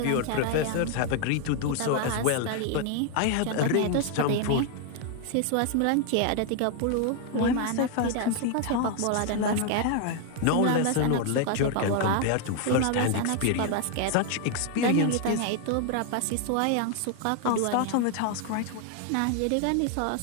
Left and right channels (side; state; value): both; different; correlation 0.00